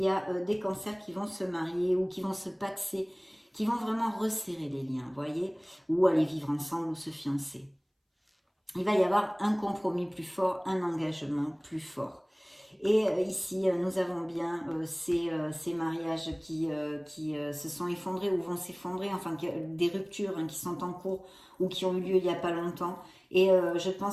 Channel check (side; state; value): both; identical; correlation 1.00